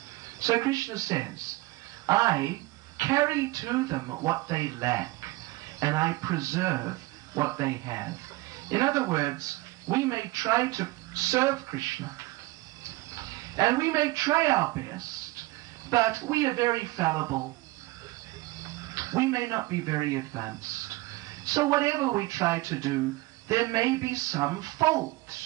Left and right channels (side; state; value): left; quieter; 20.8 dB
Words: So Krishna says, I carry to them what they lack, and I preserve what they have. In other words, we may try to serve Krishna, and we may try our best, but we are very fallible. We may not be very advanced. So whatever we try to do, there may be some